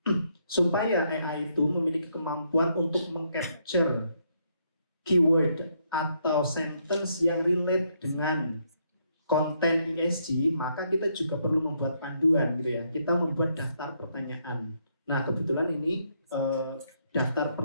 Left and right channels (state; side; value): inverted; both; correlation -0.74